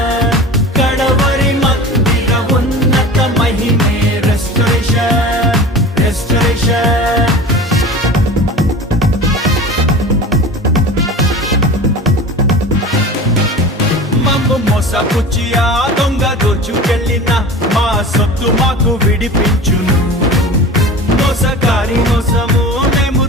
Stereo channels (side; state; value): both; normal; correlation 0.35